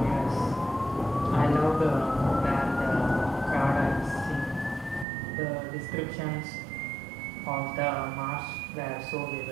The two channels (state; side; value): drops out; left; at 5.1 s